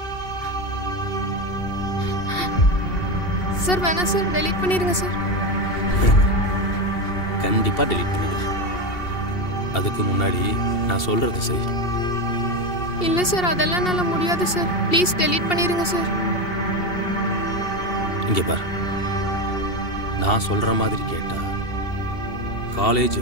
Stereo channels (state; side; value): late; right; 2.7 ms